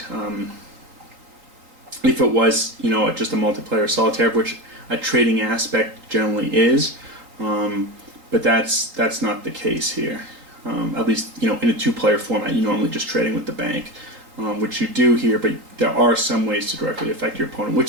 If it was, just a multiplayer solitaire, which a trading aspect generally is. But that's not the case here. At least in a two-player format, you're normally just trading with the bank, which you do here. But there are some ways to directly affect your opponent,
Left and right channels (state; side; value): late; left; 3.8 ms